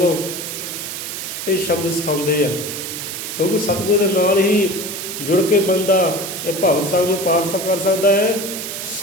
ਇਹ ਸ਼ਬਦ ਸਿਖਾਉਂਦੇ ਆ, ਕਿਉਂਕਿ ਸਤਿਗੁਰ ਦੇ ਨਾਲ ਹੀ ਜੁੜ ਕੇ ਬੰਦਾ ਇਹ ਭਵ ਸਾਗਰ ਨੂੰ ਪਾਰ ਕਰ ਸਕਦਾ ਹੈ।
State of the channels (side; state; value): right; noise; hiss, 6 dB below the sound